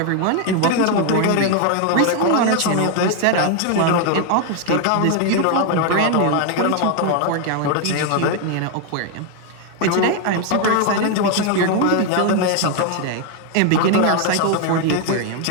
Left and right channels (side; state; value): both; different; correlation 0.01